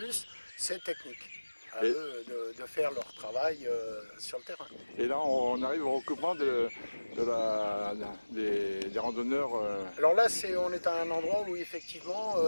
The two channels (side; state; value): both; inverted; correlation -1.00